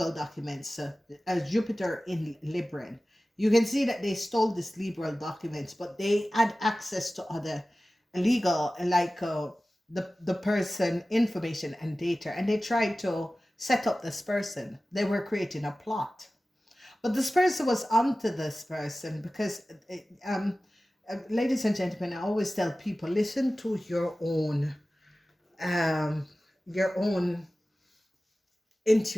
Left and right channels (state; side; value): normal; both; correlation 0.96